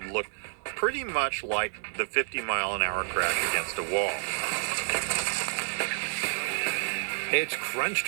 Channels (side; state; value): left; silent; 58 dB below the other